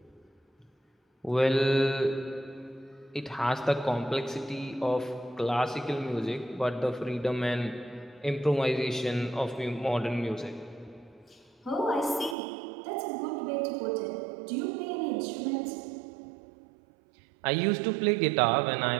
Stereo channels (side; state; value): left; drops out; at 12.4 s